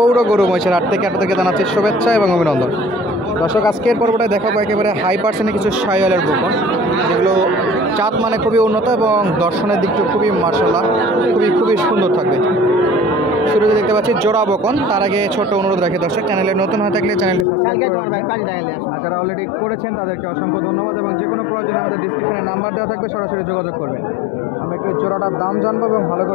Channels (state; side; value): drops out; right; at 17.4 s